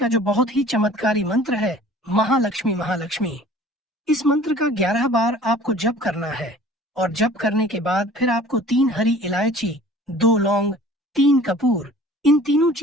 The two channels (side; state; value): both; normal; correlation 0.48